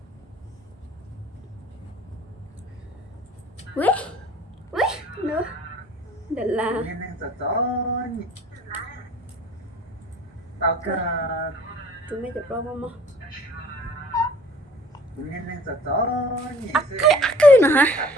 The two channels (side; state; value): both; normal; correlation 0.51